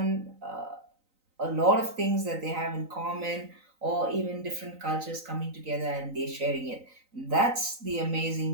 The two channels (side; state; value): left; late; 3.9 ms